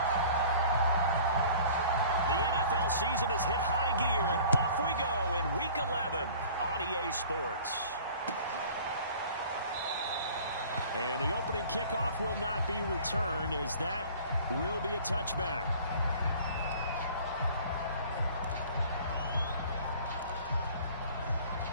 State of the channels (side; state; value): both; inverted; correlation -0.47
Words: Season has hit high gear, and off we go in Week 11 on EA Sports. And the opening kickoff will not be returned, as that will be a touchback.